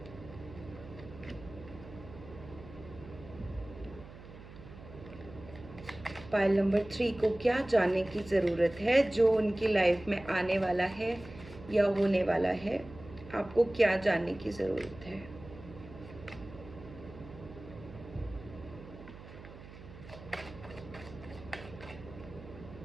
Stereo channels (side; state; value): right; noise; hum, 16 dB below the sound